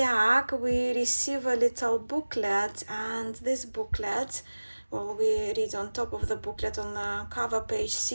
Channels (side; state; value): both; inverted; correlation -1.00